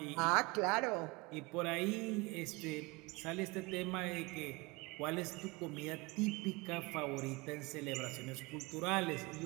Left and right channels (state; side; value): quieter; left; 25.5 dB